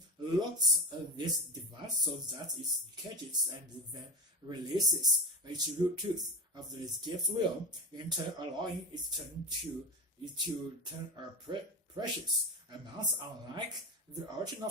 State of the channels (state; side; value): normal; both; correlation 0.23